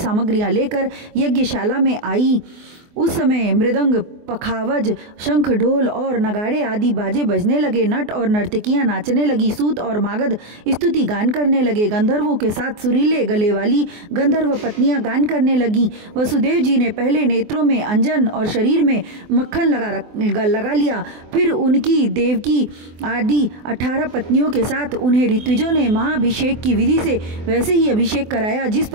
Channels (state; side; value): late; left; 24 ms